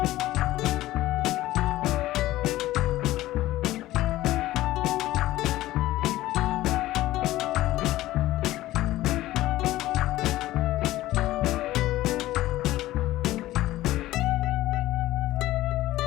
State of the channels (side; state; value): right; quieter; 15.9 dB